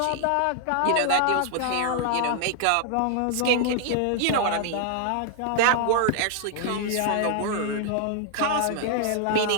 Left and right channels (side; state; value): both; different; correlation 0.00